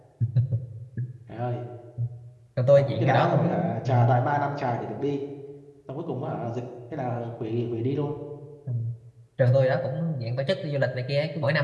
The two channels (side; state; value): both; identical; correlation 1.00